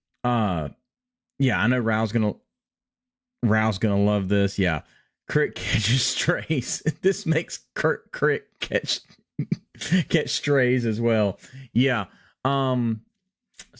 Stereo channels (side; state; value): both; identical; correlation 1.00